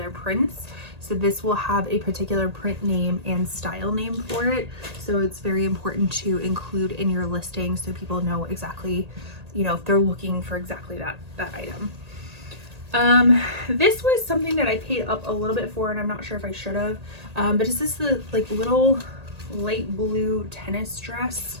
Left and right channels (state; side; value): late; left; 1.8 ms